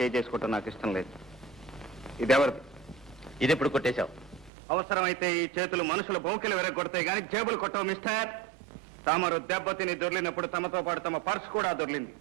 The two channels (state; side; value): drops out; left; at 4.5 s